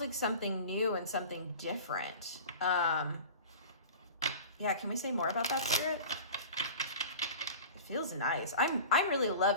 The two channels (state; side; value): inverted; both; correlation -0.38